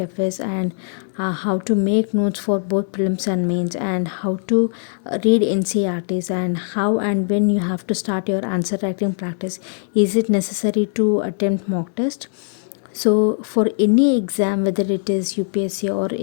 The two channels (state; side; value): silent; right; 61 dB below the other